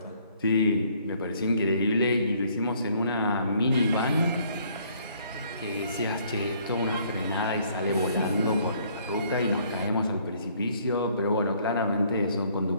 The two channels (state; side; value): inverted; both; correlation -0.63